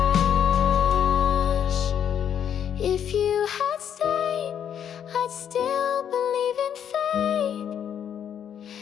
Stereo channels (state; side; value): quieter; right; 8.9 dB